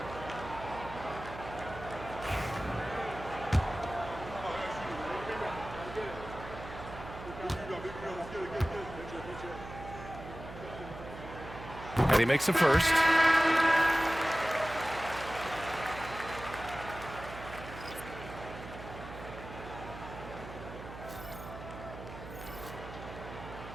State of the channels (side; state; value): right; noise; hum, 12 dB below the sound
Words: And he makes the first.